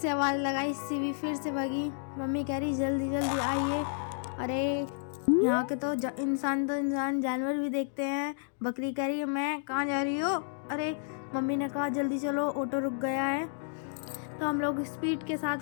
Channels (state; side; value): silent; right; digital silence